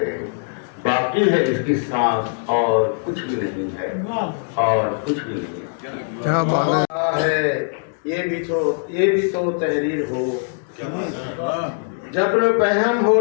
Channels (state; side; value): silent; right; digital silence